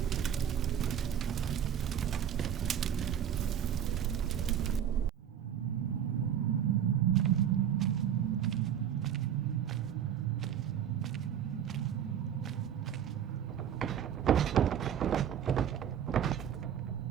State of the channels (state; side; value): quieter; left; 9.4 dB